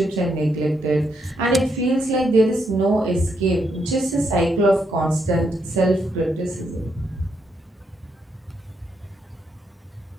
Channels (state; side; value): normal; both; correlation 0.78